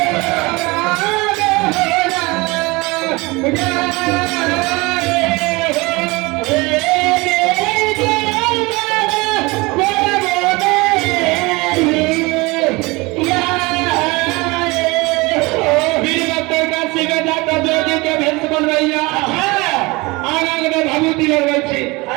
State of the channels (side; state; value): left; quieter; 24.0 dB